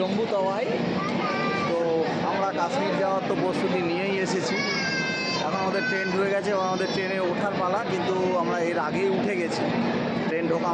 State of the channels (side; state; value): both; identical; correlation 1.00